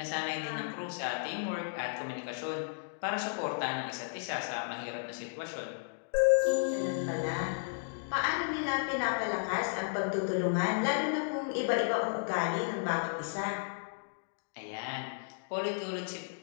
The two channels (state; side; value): silent; right; digital silence